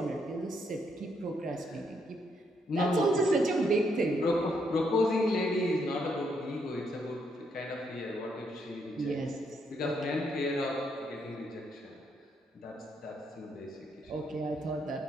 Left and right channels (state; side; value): normal; both; correlation 0.75